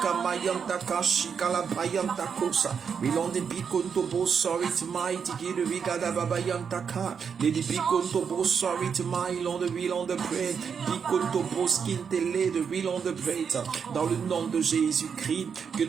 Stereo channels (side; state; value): left; quieter; 6.7 dB